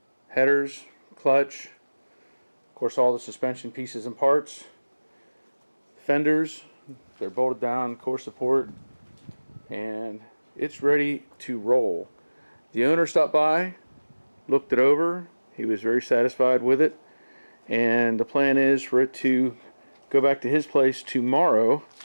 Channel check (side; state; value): both; inverted; correlation -1.00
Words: Headers, clutch, of course all the suspension pieces and parts. Fenders, they're bolted down, core support, and it's ready to roll. The owner stopped by, looked it over, he was very satisfied with it, and the plan is for it to go back to his place tomorrow,